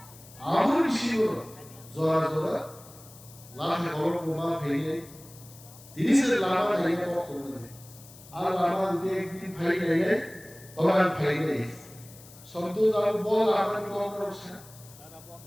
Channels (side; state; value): left; noise; hiss, 21 dB below the sound